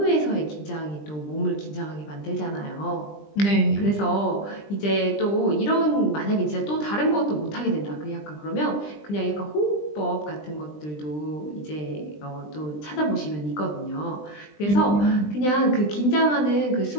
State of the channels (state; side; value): late; right; 20 ms